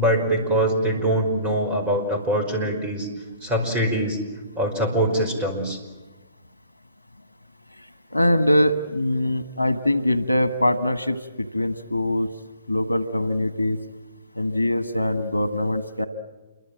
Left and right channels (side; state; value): both; inverted; correlation -0.62